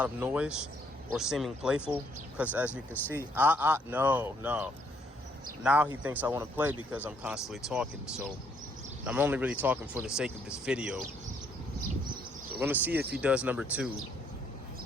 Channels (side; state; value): both; normal; correlation 0.68